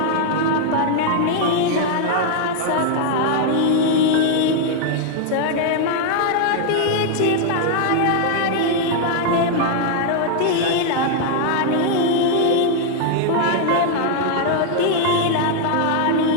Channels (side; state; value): both; different; correlation 0.00